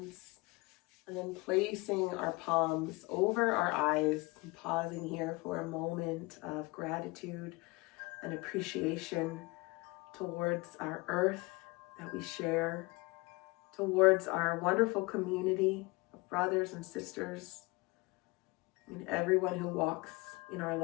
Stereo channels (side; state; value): right; quieter; 24.9 dB